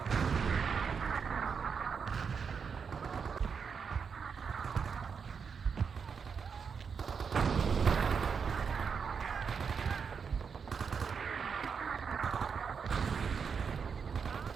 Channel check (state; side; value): quieter; left; 6.1 dB